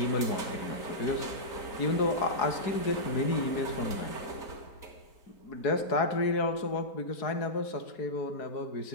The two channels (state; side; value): late; right; 4.7 ms